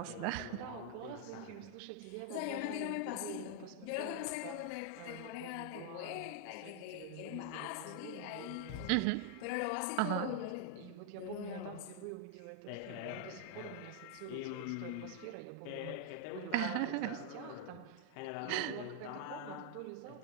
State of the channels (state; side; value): different; both; correlation 0.00